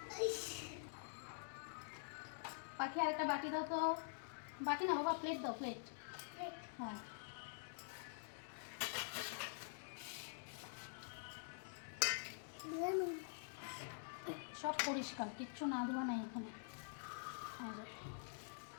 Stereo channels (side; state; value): right; silent; digital silence